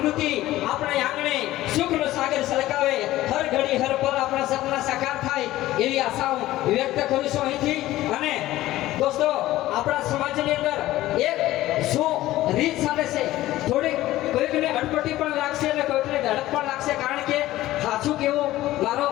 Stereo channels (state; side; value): quieter; right; 15.8 dB